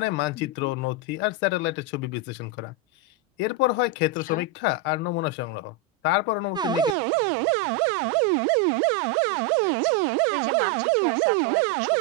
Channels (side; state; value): left; drops out; at 7.0 s